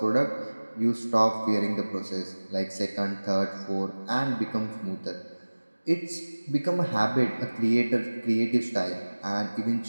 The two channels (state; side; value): inverted; both; correlation -1.00